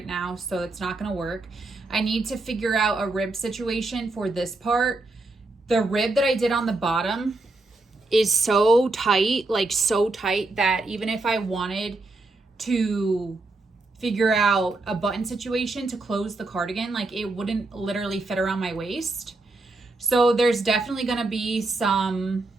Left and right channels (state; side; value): quieter; left; 3.1 dB